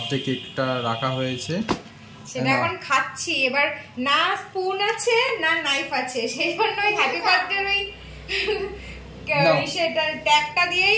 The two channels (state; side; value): identical; both; correlation 1.00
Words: কেকটা রাখা হয়েছে, সেটা এখন খাচ্ছি। এবার না স্পুন আছে না নাইফ আছে, সেই জন্য ওই হ্যাপি বার্থডে ওই সেটা ট্যাগটা